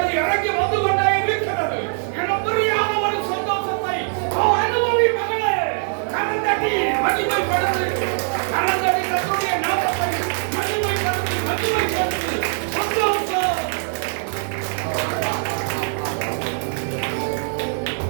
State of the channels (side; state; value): left; silent; 64 dB below the other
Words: இறங்கி வந்து கொண்டே இருக்கிறது. என புரியாத ஒரு சந்தோஷத்தை அனுபவி மகளே. கரந்தட்டி மகிமைப்படுத்து, கரந்தட்டி கர்த்தருடைய நாமத்தை மகிமைப்படுத்து, மகிமைப்படுத்து. சந்தோஷம்.